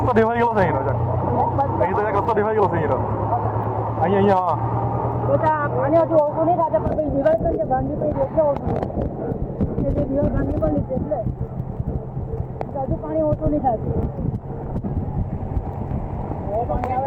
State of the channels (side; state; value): both; identical; correlation 1.00